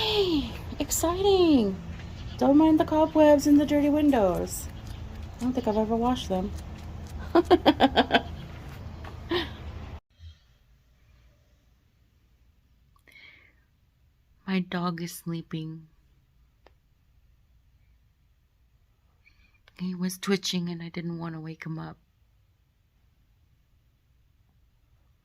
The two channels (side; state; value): both; identical; correlation 1.00